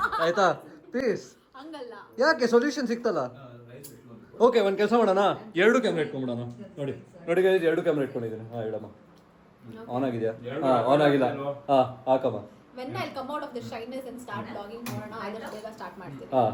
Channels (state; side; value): identical; both; correlation 1.00